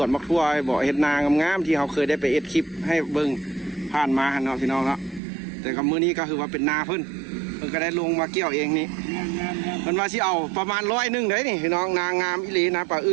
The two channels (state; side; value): drops out; left; at 5.2 s